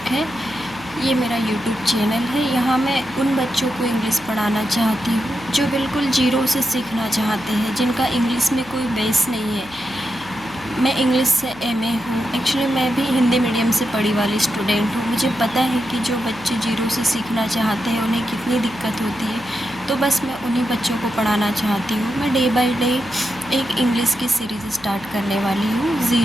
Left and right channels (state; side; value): noise; left; hum, 22 dB below the sound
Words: है। ये मेरा यूट्यूब चैनल है। यहाँ मैं उन बच्चों को इंग्लिश पढ़ाना चाहती हूँ जो बिल्कुल ज़ीरो से सीखना चाहते हैं, जिनका इंग्लिश में कोई बेस नहीं है। मैं इंग्लिश से एमए हूँ। एक्चुअली मैं भी हिंदी मीडियम से पढ़ी वाली स्टूडेंट हूँ। मुझे पता है कि जो बच्चे ज़ीरो से सीखना चाहते हैं उन्हें कितनी दिक्कत होती है। तो बस मैं उन्हीं बच्चों को पढ़ाना चाहती हूँ। मैं डे बाय डे एक इंग्लिश की सीरीज़ स्टार्ट करने वाली हूँ,